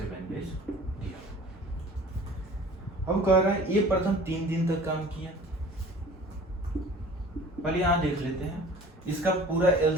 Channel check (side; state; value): both; normal; correlation 0.45